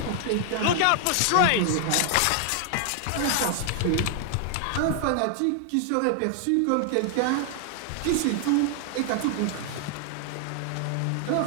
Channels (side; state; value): both; different; correlation 0.00